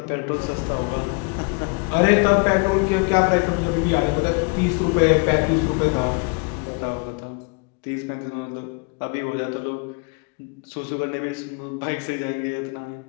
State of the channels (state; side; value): quieter; right; 33.6 dB